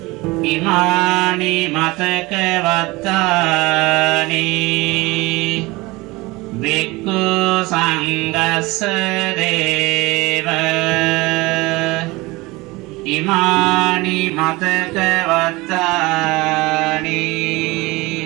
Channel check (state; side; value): quieter; left; 22.4 dB